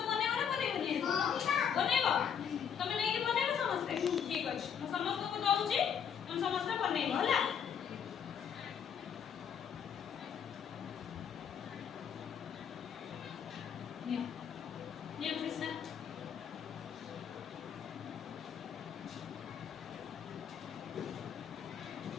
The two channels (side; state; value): right; quieter; 7.9 dB